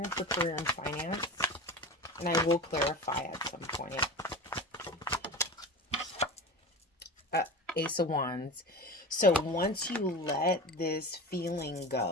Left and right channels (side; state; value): both; normal; correlation 0.30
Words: for career and finance? And I will clarify at some point. Ace of Wands. So once you let this feeling